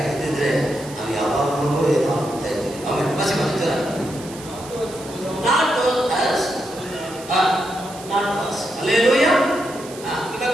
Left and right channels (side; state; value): right; noise; hiss, 16 dB below the sound